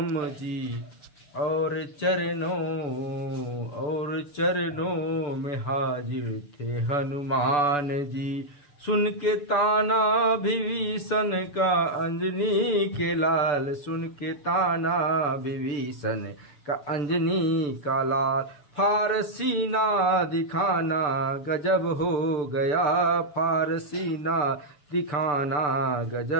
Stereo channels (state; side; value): late; right; 6.9 ms